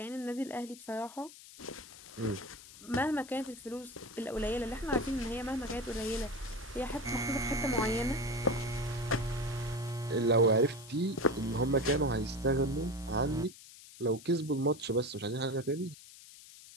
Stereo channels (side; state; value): left; noise; hiss, 18 dB below the sound